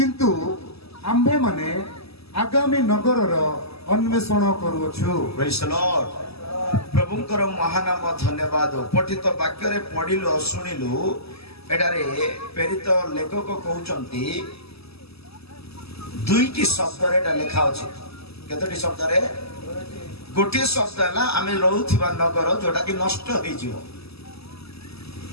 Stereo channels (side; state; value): right; late; 0.78 ms